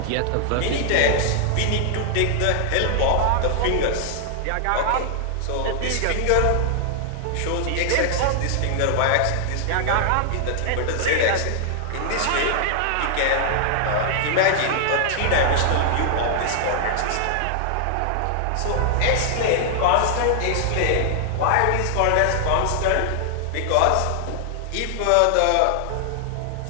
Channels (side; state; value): both; different; correlation 0.00